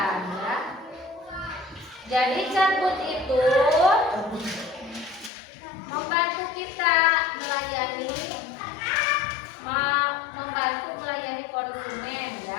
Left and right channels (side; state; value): right; drops out; at 5.3 s